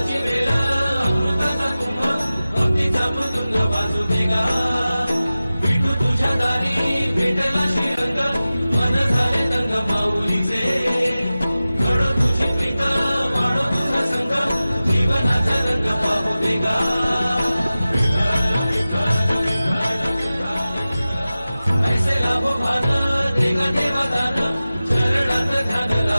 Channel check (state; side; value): inverted; both; correlation -0.95